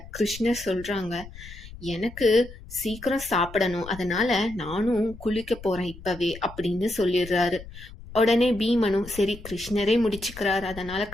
கிருஷ்ணர் சொல்றாங்க, எனக்கு சீக்கிரம் சாப்பிடணும், அதனால நானும் குளிக்க போறேன் இப்பவே அப்படின்னு சொல்லிடுறாரு. உடனே பீமனும் சரி கிருஷ்ணரே முடிச்சுக்கிறார், அதனால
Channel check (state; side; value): noise; left; rumble, 16 dB below the sound